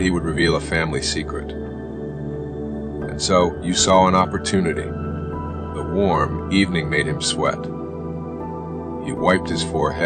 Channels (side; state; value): both; identical; correlation 1.00